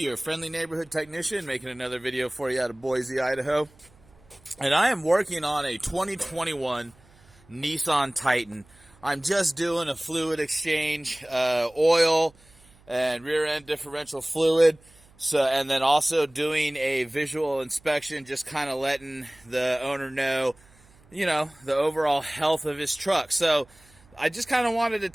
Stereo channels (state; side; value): noise; right; hum, 28 dB below the sound